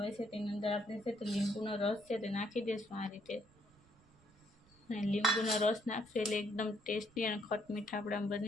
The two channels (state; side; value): noise; right; rumble, 29 dB below the sound